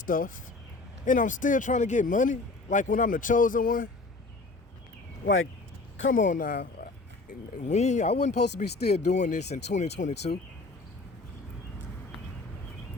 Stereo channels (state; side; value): quieter; right; 3.4 dB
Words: and I'm still trying to get money, like when I'm the chosen one. Like, come on now. I wasn't supposed to be still doing this in 2022.